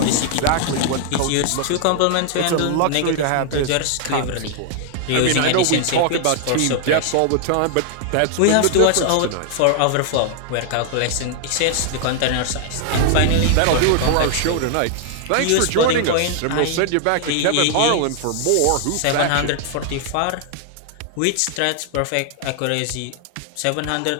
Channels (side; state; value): both; different; correlation 0.00